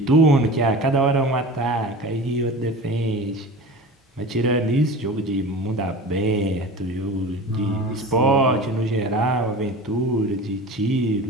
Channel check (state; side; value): normal; both; correlation 0.34